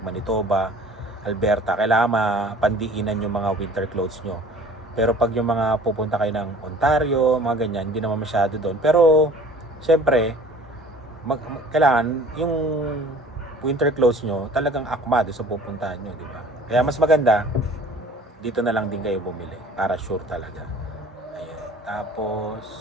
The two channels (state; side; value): normal; both; correlation 0.48